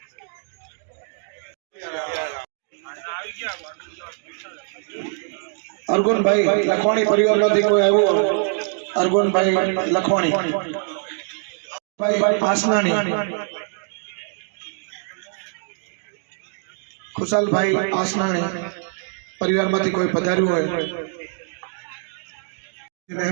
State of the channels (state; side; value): silent; left; 57 dB below the other